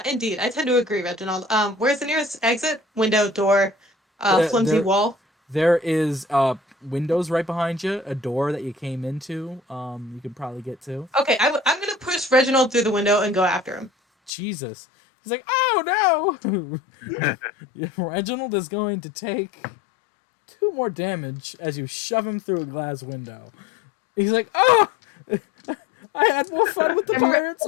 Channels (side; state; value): right; drops out; at 14.3 s